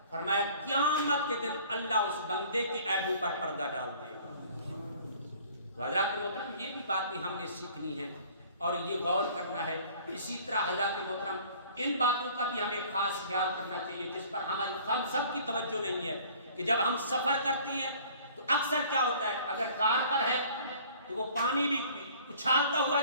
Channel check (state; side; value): inverted; both; correlation -0.51